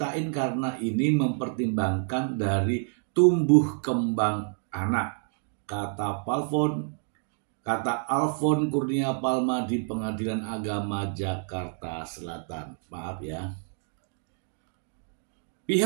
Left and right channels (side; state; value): left; silent; 59 dB below the other